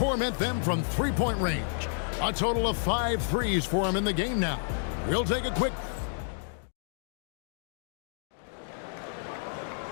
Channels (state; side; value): silent; right; digital silence